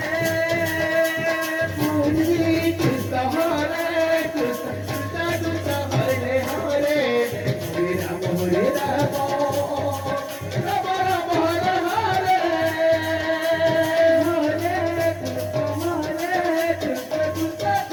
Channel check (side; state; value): both; identical; correlation 1.00